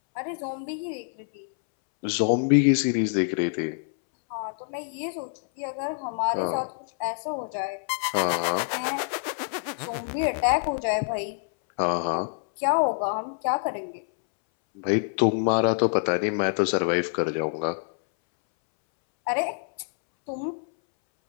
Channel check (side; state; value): right; silent; 61 dB below the other